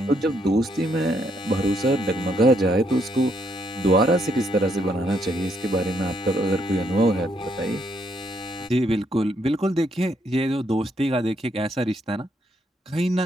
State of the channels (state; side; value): normal; both; correlation 0.74